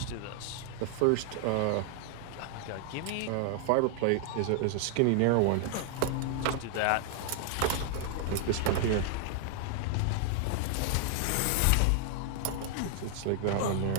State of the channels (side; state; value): both; different; correlation 0.00